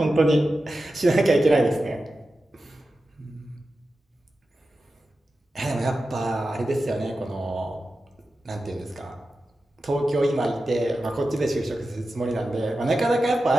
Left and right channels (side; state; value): both; normal; correlation 0.92